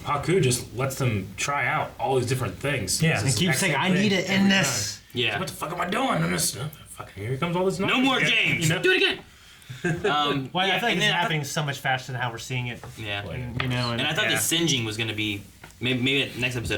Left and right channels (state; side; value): identical; both; correlation 1.00